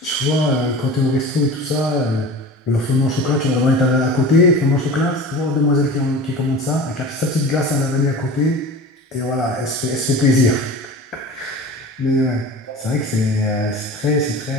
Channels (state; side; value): normal; both; correlation 0.35